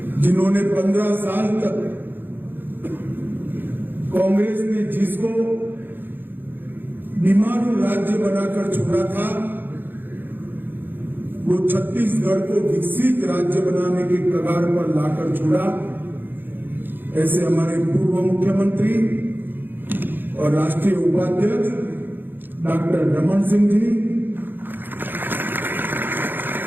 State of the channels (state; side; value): late; left; 0.095 ms